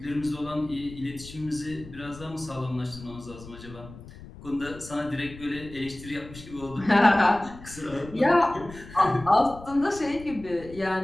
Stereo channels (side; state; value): left; noise; rumble, 16 dB below the sound